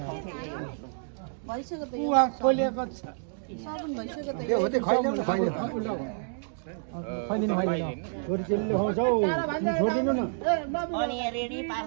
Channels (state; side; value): silent; left; digital silence